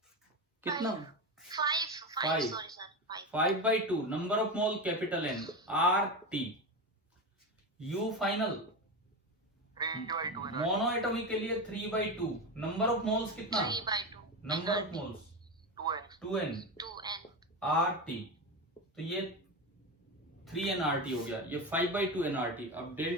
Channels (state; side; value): normal; both; correlation 0.19